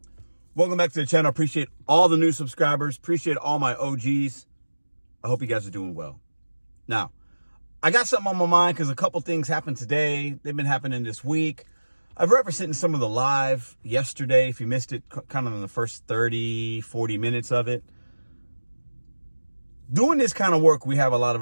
Welcome back to the channel. Appreciate all the new subscribers. Appreciate all my OGs. I hope you guys are doing well. Now, I got something on my mind because a couple things happened today. They've been happening this week. I've referenced it in some of the live yesterday. If you missed it, kind of in the first 30, 40 minutes of it. Doing this kind of work, we have a lot of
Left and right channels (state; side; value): inverted; both; correlation -1.00